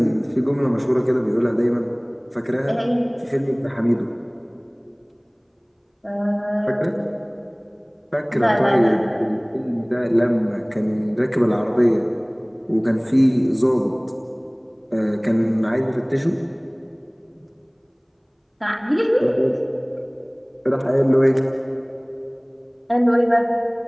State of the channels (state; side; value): identical; both; correlation 1.00